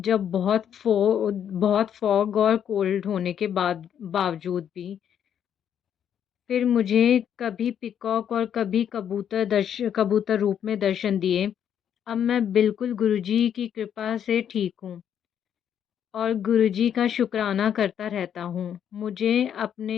जब बहुत फॉग और कोल्ड होने के बावजूद भी। फिर मुझे कभी पीकॉक और कभी कबूतर रूप में दर्शन दिए। अब मैं बिल्कुल गुरुजी की कृपा से ठीक हूँ और गुरुजी का शुक्राना करता रहता हूँ। मुझे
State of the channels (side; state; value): right; quieter; 9.1 dB